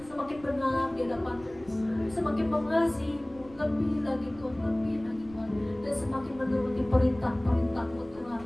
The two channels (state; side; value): noise; right; rumble, 23 dB below the sound